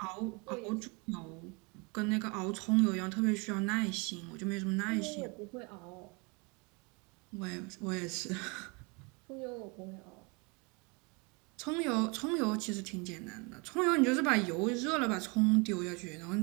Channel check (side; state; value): left; quieter; 30.4 dB